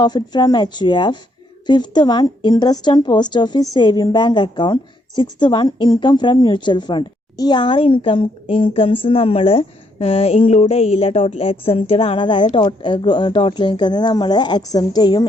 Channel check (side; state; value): both; normal; correlation 0.73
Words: from HUF. Fifth one, interest on post office saving bank account. Sixth one, income from mutual fund. ഈ 6 incomes നമ്മൾ include ചെയ്യില്ല, total exempted ആണ്. അതായത് total income നമ്മൾ exempt ചെയ്യും